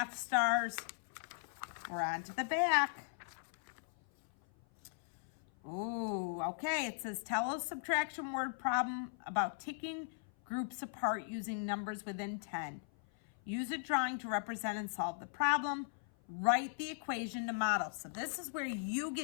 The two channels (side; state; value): right; silent; 52 dB below the other